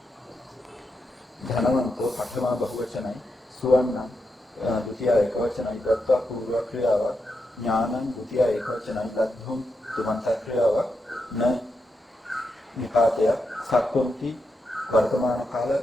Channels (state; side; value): normal; both; correlation 0.85